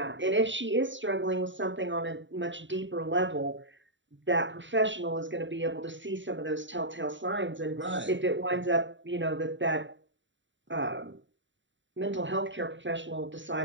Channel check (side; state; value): left; late; 0.54 ms